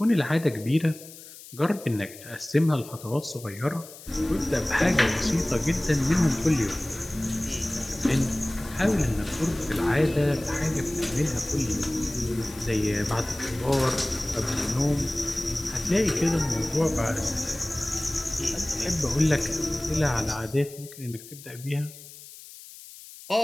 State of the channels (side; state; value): left; noise; hiss, 17 dB below the sound